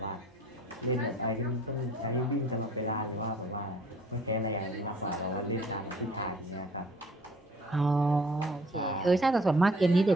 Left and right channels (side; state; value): both; normal; correlation 0.54